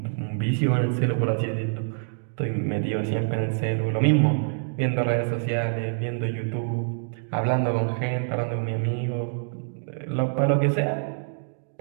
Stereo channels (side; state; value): left; silent; digital silence